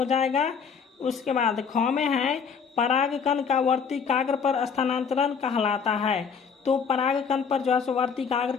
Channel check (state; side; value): quieter; right; 6.2 dB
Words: जाएगा। उसके बाद ख में है परागकण का वर्तिकाग्र पर स्थानांतरण कहलाता है, तो परागकण पर जो है वर्तिकाग्र